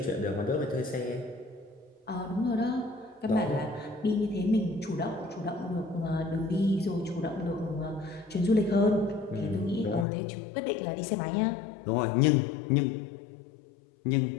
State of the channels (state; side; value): drops out; right; at 10.1 s